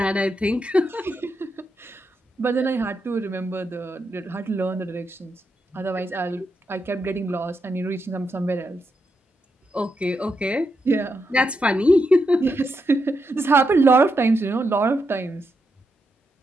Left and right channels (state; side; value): normal; both; correlation 0.83